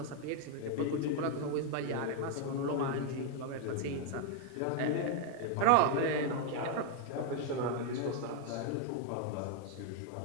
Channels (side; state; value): both; different; correlation 0.00